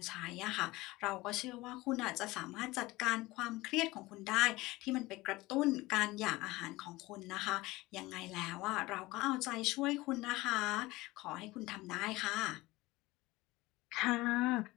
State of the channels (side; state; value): right; quieter; 20.0 dB